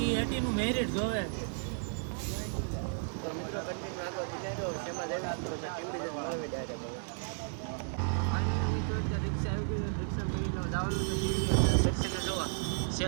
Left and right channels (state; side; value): silent; left; 55 dB below the other